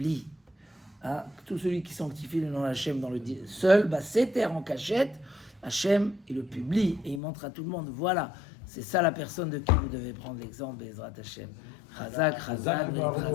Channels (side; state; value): right; drops out; at 7.2 s